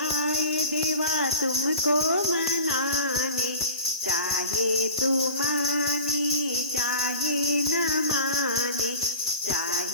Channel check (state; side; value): inverted; both; correlation -0.37